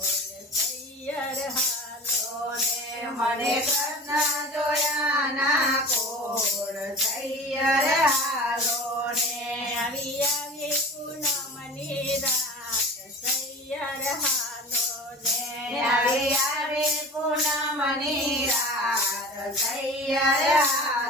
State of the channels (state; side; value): normal; both; correlation 0.36